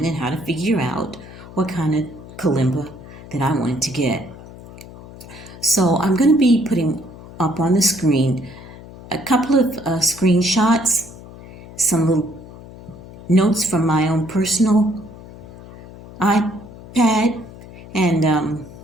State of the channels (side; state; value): left; noise; hum, 17 dB below the sound